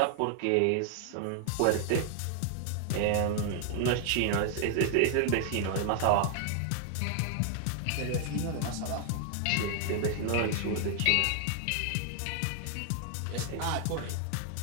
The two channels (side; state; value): both; different; correlation 0.00